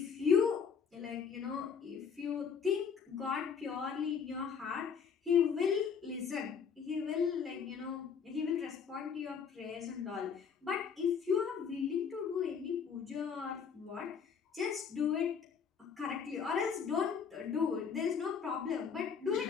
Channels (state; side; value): quieter; right; 6.6 dB